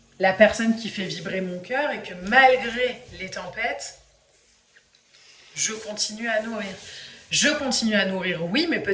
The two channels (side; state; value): both; identical; correlation 1.00